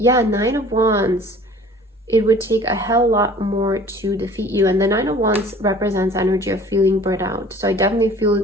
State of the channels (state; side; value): normal; both; correlation 0.48